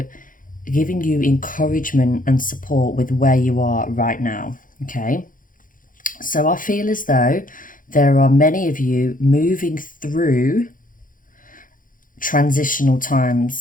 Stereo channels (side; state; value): right; late; 0.39 ms